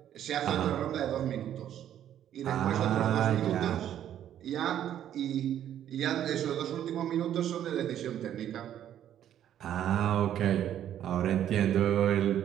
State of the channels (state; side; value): quieter; left; 10.8 dB